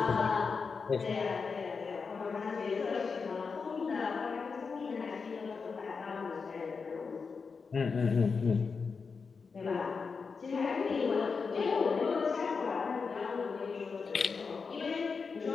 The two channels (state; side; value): quieter; right; 5.1 dB